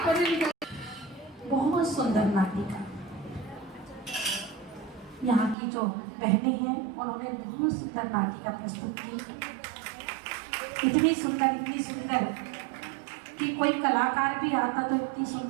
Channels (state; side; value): drops out; left; at 5.6 s